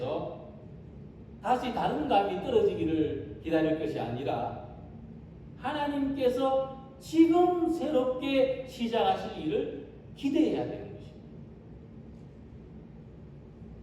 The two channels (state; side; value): identical; both; correlation 1.00